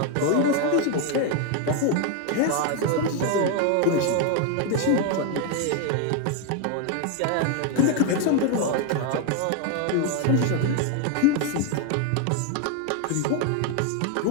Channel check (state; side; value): different; both; correlation 0.01